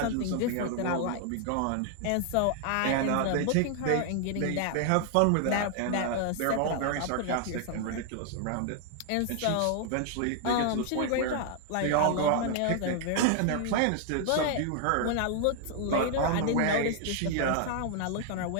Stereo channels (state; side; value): different; both; correlation 0.00